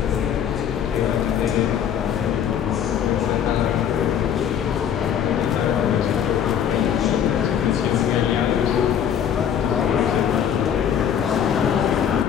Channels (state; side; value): quieter; right; 8.9 dB